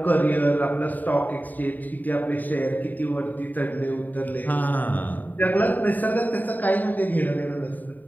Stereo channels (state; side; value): late; right; 0.085 ms